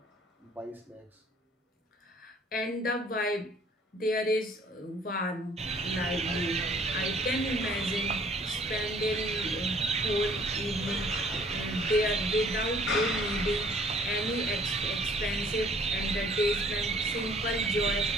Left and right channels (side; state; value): both; normal; correlation 0.57